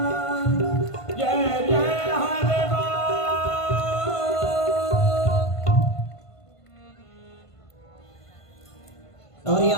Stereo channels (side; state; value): right; late; 1.5 ms